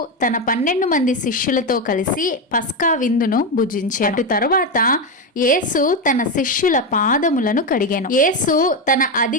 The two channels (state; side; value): normal; both; correlation 0.11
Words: తన 12 మంది శిష్యులతో కలిసి పస్కా విందును భుజించాడు. అటు తరువాత యేసు తన శిష్యుల పాదములను కడిగాను. యేసు తన